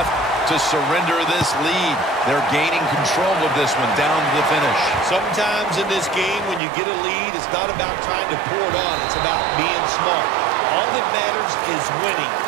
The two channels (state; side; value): drops out; left; at 6.6 s